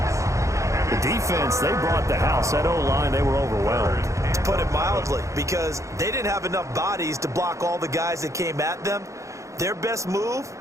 The defense, they brought the house. That O-line, they were overwhelmed. To put it mildly, because they didn't have enough bodies to block all the guys that came at them. Their best move,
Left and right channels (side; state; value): left; late; 0.15 ms